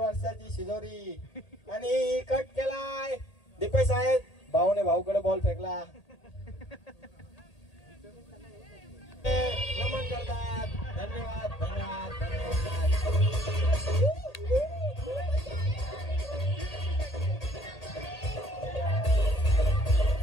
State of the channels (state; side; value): late; right; 1.8 ms